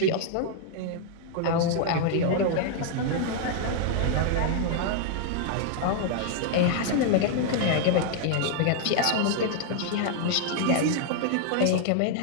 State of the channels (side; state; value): both; different; correlation 0.00